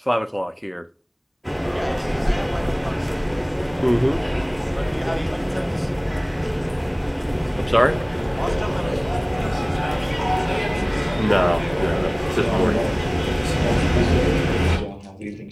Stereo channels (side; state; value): both; identical; correlation 1.00